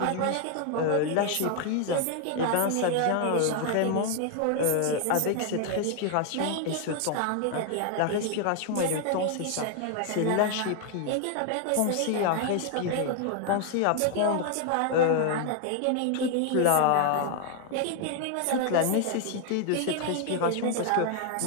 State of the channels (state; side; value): different; both; correlation 0.00